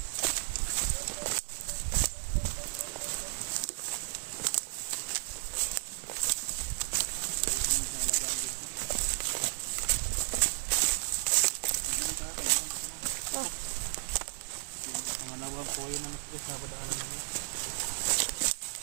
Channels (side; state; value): left; silent; digital silence